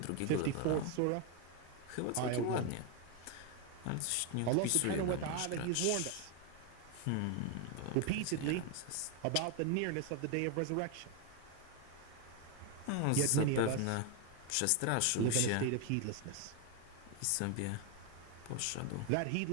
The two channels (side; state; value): both; different; correlation 0.01